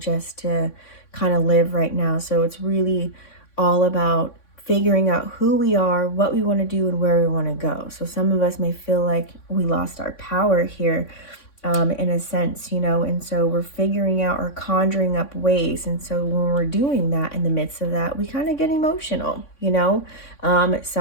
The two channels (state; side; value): late; right; 3.6 ms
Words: to kind of live right now. So it's really all about figuring out who we are, what we want to do, and where we want to go. So some of us may feel like we lost our power here, in a sense, and so we're figuring out or conjuring up ways. And so when we're doing that, in the midst of that, we kind of get emotional.